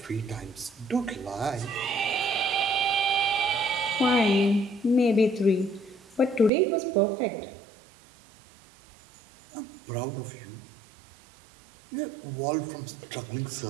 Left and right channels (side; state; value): left; drops out; at 6.5 s